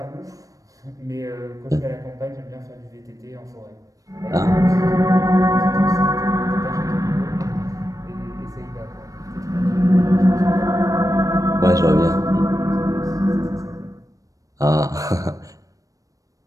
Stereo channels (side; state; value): left; late; 0.16 ms